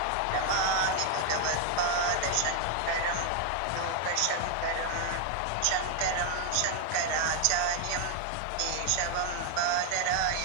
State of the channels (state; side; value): different; both; correlation 0.01